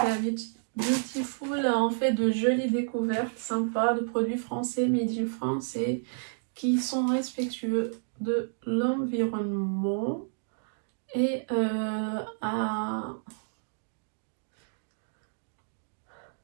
Beautiful, on fait de jolies découvertes sympas de produits français, made in France et qui sont respectueux de l'environnement. Et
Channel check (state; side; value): silent; left; digital silence